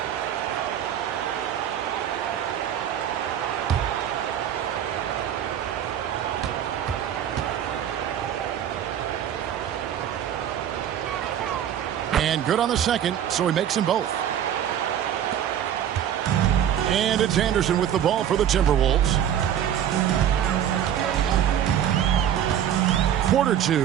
And good on the second, so he makes them both. And it's Anderson with the ball for the Timberwolves. Quarter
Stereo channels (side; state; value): left; quieter; 10.0 dB